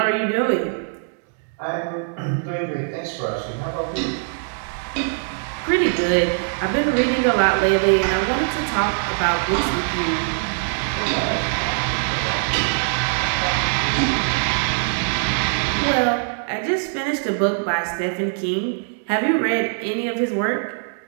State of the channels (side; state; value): left; silent; digital silence